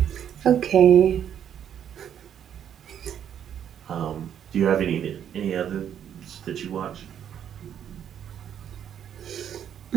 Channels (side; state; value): left; quieter; 9.3 dB